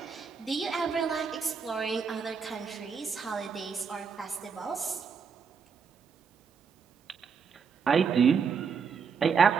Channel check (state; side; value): quieter; left; 6.0 dB